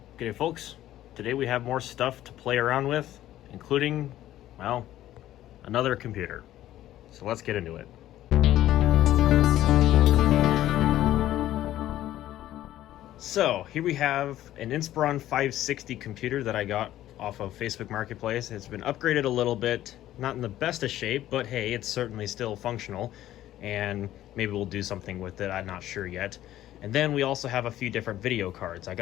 Okay, folks, today we have more stuff to play around with, including, well, another computer. So let's get into it. So here we have an Inspiron 560 computer that I got off of Facebook Marketplace. It's been upgraded a little bit, not in the best of shape, but hey, it's certainly still functional, and maybe we'll do something with it. I'm not sure yet. And then we also have a few different video cards. I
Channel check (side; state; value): right; quieter; 13.5 dB